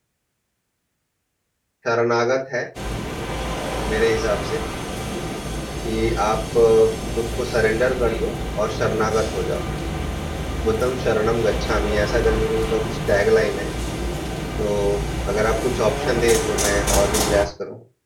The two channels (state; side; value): identical; both; correlation 1.00